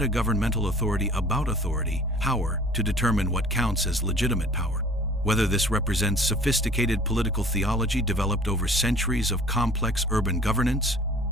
authority about authority, power to determine what counts as legitimate power. Whether this represents sophisticated political theology developed over centuries of complex urban governance,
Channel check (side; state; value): both; normal; correlation 0.48